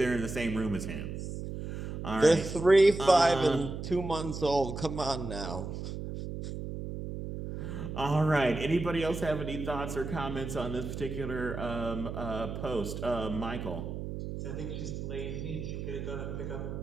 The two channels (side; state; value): right; noise; hum, 6 dB below the sound